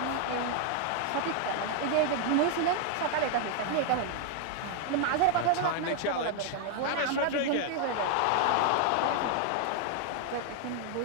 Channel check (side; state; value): both; different; correlation 0.00